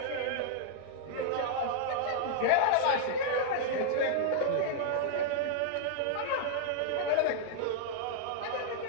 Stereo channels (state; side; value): different; both; correlation -0.01